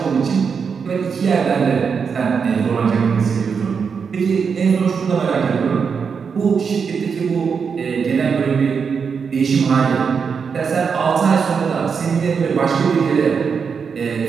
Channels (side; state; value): left; quieter; 6.0 dB